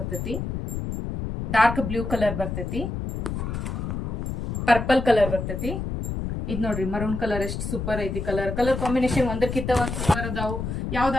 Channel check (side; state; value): left; noise; rumble, 4 dB below the sound